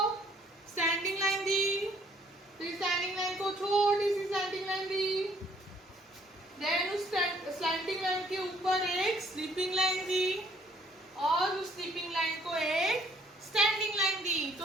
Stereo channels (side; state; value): both; normal; correlation 0.63